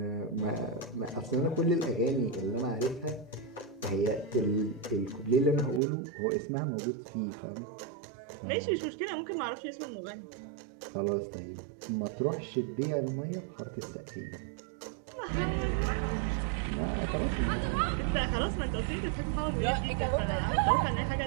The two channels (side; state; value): left; drops out; at 5.8 s